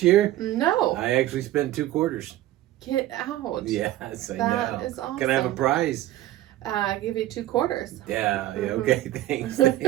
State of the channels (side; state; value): left; quieter; 14.7 dB